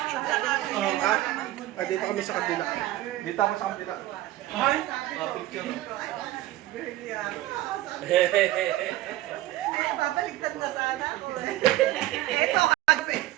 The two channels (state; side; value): quieter; left; 15.6 dB